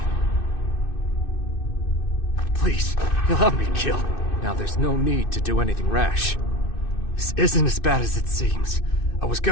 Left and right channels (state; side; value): late; right; 2.6 ms